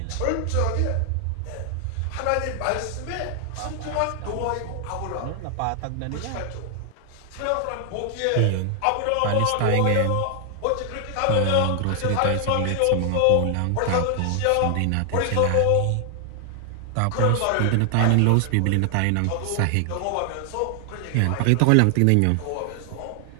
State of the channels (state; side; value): different; both; correlation 0.00